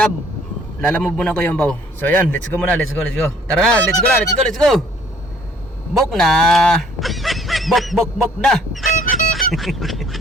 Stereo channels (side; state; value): both; normal; correlation 0.59